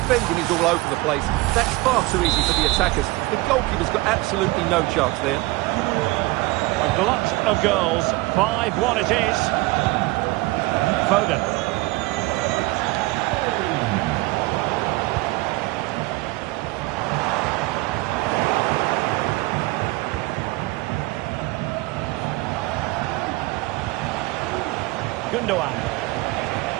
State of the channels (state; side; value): quieter; left; 21.3 dB